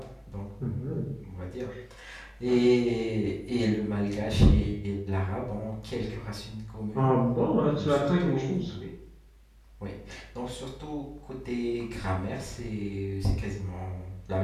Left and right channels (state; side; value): identical; both; correlation 1.00